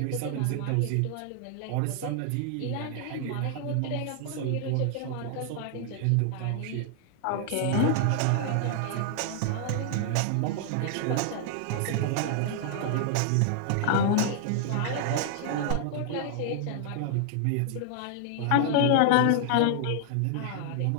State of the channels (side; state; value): both; different; correlation 0.00